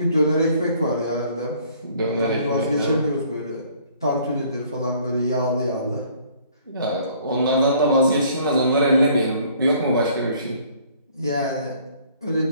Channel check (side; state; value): both; inverted; correlation -0.58